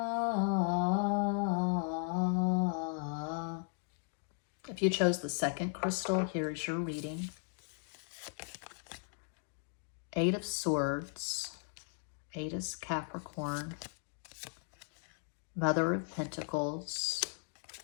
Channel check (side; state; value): right; silent; 53 dB below the other